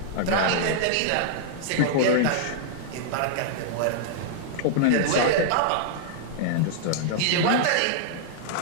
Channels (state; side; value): different; both; correlation -0.01